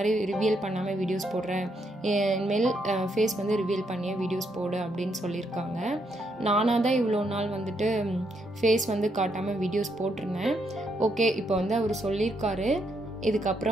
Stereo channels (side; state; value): both; normal; correlation 0.77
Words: ரிவீல் பண்ணாமல் வீடியோஸ் போடுறேன், இனிமேல் ஃபேஸ் வந்து ரிவீல் பண்ணியே வீடியோஸ் போடு அப்படின்னு சொல்லியிருக்காங்க. நானாக தான் இவ்வளோ நாள் வந்துட்டு ஃபேஸ் வந்து காட்டாமல் வீடியோஸ் போட்டிருந்தேன். ஓகே, இப்போ வந்து அவர் சொல்லியிருக்காரு,